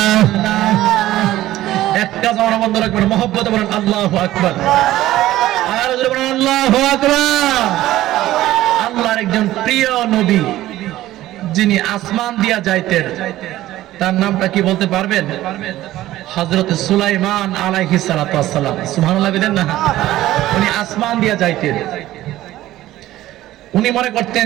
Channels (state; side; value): quieter; left; 15.1 dB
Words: একটা জানা বন্ধ রাখবেন, মুহাব্বতে বলেন আল্লাহু আকবার, আর জোরে বলেন আল্লাহু আকবার। আল্লাহর একজন প্রিয় নবী যিনি আসমান দিয়া যাইতেন, তার নামটা কি বলতে পারবেন? হযরত সুলাইমান আলাইহিস সালাতু ওয়াস সালাম। সুবহানাল্লাহ বলেন না। উনি আসমান দিয়া যাইতেন, উনি মনে করতেন